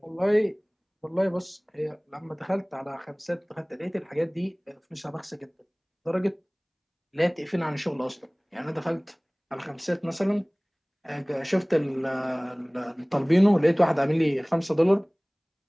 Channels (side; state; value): both; identical; correlation 1.00